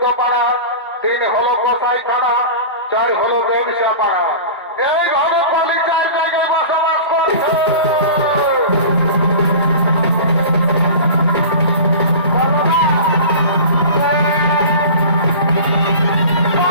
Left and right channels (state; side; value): inverted; both; correlation -0.35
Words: 3 হলো কসাইখানা, 4 হলো ব্যবসা পাড়া। এইভাবে কলি 4 জায়গায় বসবাস করছে।